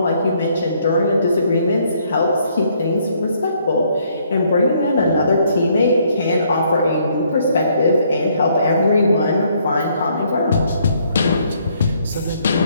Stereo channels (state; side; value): inverted; both; correlation -0.68